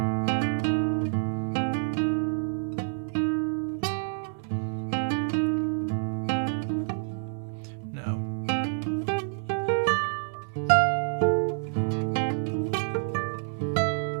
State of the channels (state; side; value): silent; left; digital silence